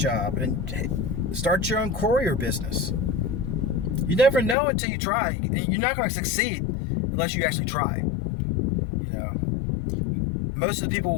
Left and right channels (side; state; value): right; drops out; at 4.5 s